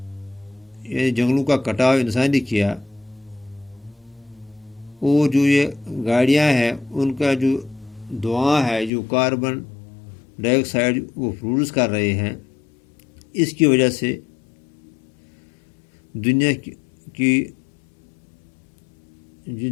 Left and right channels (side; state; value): right; drops out; at 8.9 s